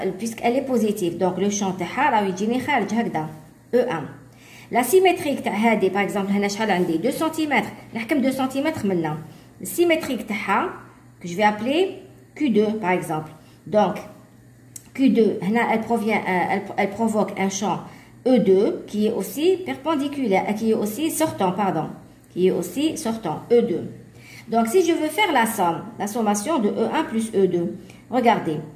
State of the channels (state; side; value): identical; both; correlation 1.00